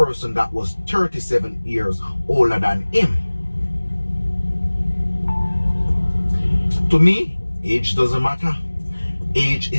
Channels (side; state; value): both; inverted; correlation -1.00